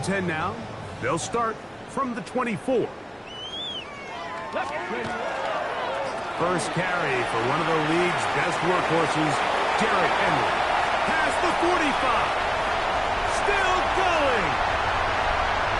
10 now. They'll start from the 24. First carry for one of the league's best workhorses, Derrick Henry. Past the 45.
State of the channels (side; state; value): both; identical; correlation 1.00